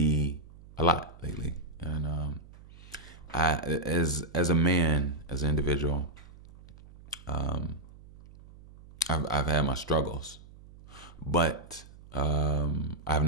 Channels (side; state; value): right; noise; hum, 20 dB below the sound